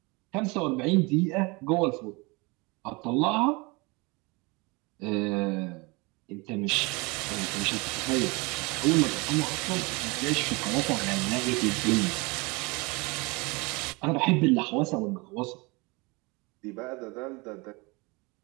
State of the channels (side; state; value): left; quieter; 26.8 dB